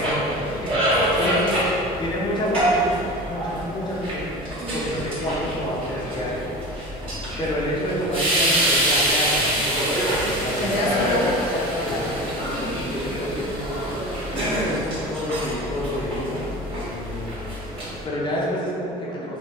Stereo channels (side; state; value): both; normal; correlation 0.33